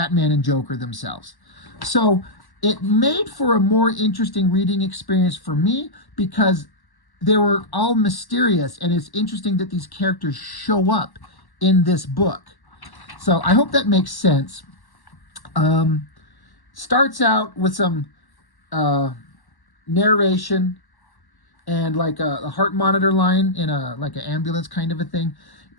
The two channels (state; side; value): late; right; 1.1 ms